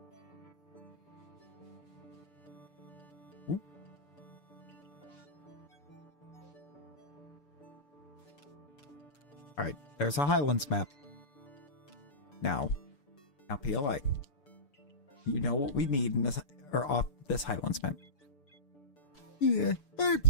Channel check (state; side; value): late; right; 6.9 ms